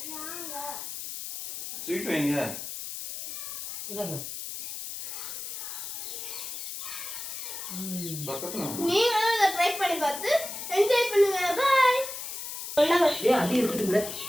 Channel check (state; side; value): noise; left; hiss, 7 dB below the sound